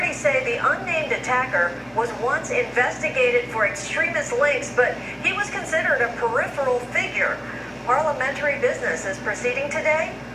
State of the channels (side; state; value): both; identical; correlation 1.00